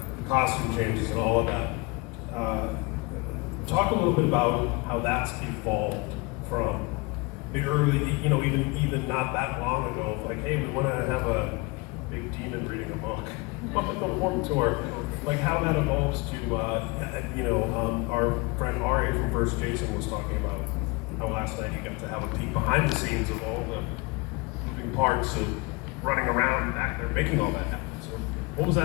the costume changes and all of that. Talk a little bit about how that's evolved from the early, even not that long ago. Like, hey, we want to have a big demon reading a book on the Warped Tour. Like how that evolves to, our friend Ari from First Jason was talking about how last night he got to have a peek behind the scenes of all the moving parts of running around back there, making all that happen. So what was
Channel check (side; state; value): right; quieter; 26.1 dB